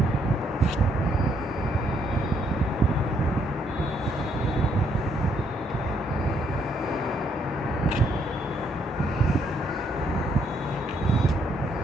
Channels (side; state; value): both; normal; correlation 0.71